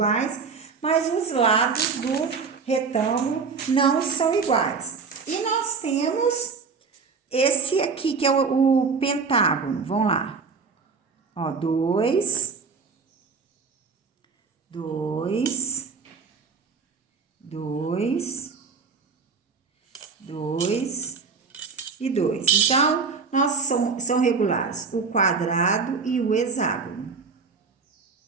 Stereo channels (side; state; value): left; quieter; 5.0 dB